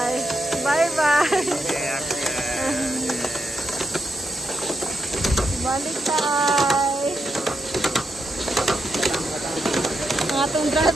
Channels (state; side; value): normal; both; correlation 0.83